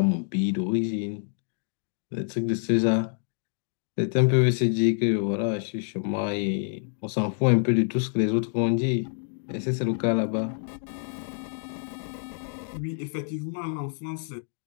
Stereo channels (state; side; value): silent; right; digital silence